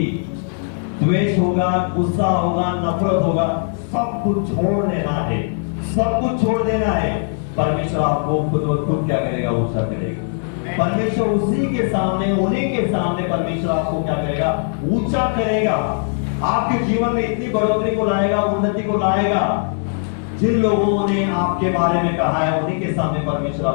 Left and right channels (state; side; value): silent; right; 66 dB below the other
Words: द्वेष होगा, गुस्सा होगा, नफरत होगा, सब कुछ छोड़ देना है, सब कुछ छोड़ देना है। परमेश्वर आपको खुद क्या करेगा, ऊंचा करेगा। परमेश्वर उसी के सामने, उन्हीं के सामने परमेश्वर आपको क्या करेगा? ऊंचा करेगा, आपके जीवन में इतनी बढ़ोतरी को लाएगा, उन्नति को लाएगा। जिन लोगों ने आपके बारे में कहा है उन्हीं के सामने परमेश्वर